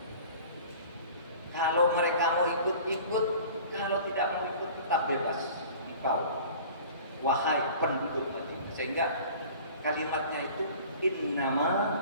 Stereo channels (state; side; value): inverted; both; correlation -0.44